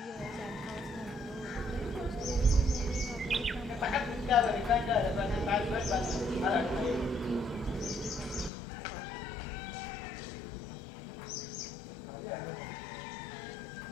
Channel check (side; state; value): right; drops out; at 8.5 s